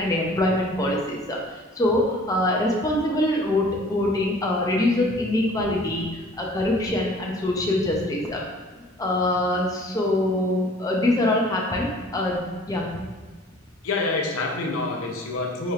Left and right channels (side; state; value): both; normal; correlation 0.50